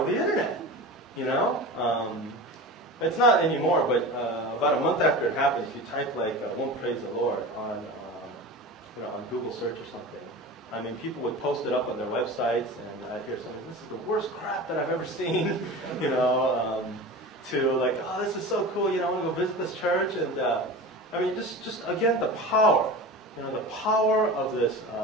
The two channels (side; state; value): both; normal; correlation 0.31